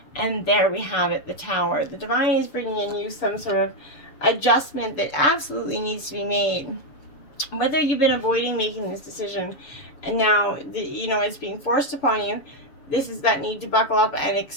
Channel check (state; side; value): late; right; 6.8 ms